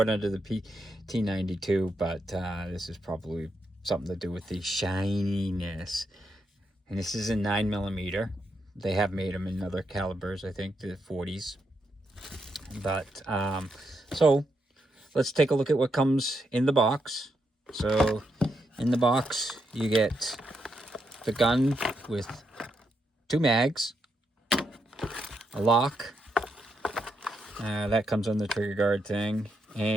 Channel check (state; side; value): normal; both; correlation 0.81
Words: it under the PT92, but this is probably something to do with the shininess. And this is a 9mm. They have made them in other calibers, I think the 40s. But so let's take a look at what comes in the box. So in the box you get the gun with 2 mags, a lock. That comes on the trigger guard thing,